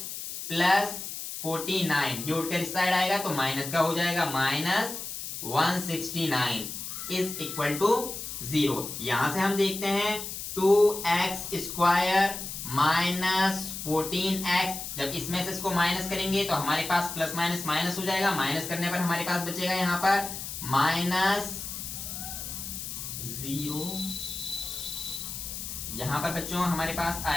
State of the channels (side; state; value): left; noise; hiss, 7 dB below the sound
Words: plus 49, ये उठकर इस साइड आएगा तो माइनस का हो जाएगा, माइनस 169 इज इक्वल टू 0। यहां से हम देखते हैं 2x स्क्वायर माइनस 14x, जब इसमें से इसको माइनस करेंगे तो हमारे पास प्लस माइनस माइनस हो जाएगा। माइनस करने पर हमारे पास बचेगा यहां पर माइनस 0। यहां पर बच्चों हमारे पास